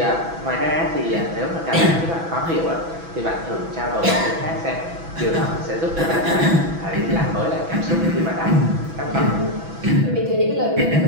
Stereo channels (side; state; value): left; late; 6.0 ms